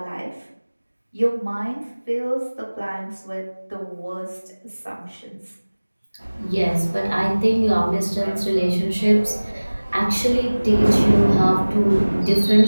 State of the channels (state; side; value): inverted; both; correlation -1.00